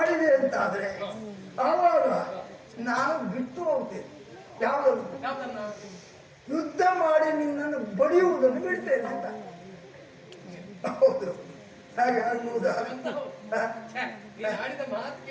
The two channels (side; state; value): both; identical; correlation 1.00